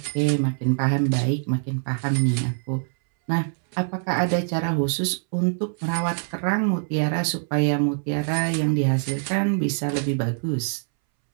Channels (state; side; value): silent; left; 63 dB below the other